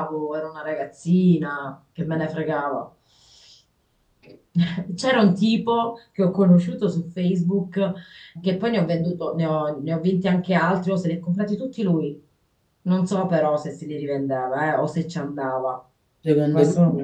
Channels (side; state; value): both; identical; correlation 1.00